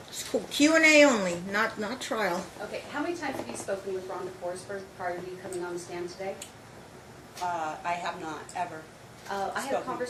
It's cool. Q&A only, not trial. Okay, how many times have you spoken with Rhonda Forsberg prior to you coming on the stand today? I have not, ever. I had a Spoken.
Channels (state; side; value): identical; both; correlation 1.00